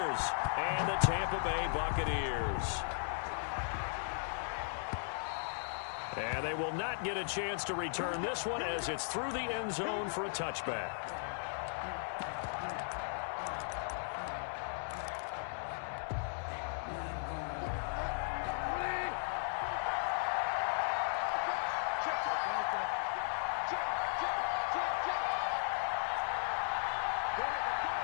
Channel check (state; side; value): silent; right; 53 dB below the other